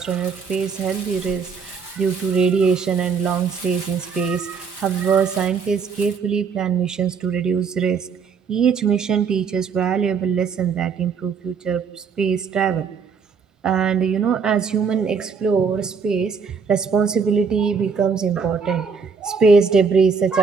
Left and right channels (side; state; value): left; quieter; 5.8 dB